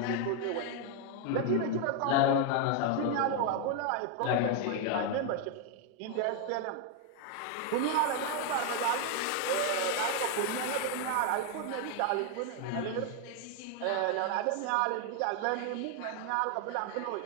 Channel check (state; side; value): different; both; correlation 0.01